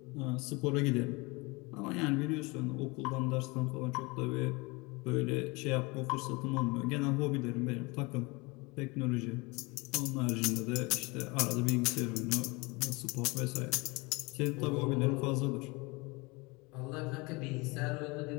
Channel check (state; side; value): quieter; right; 26.1 dB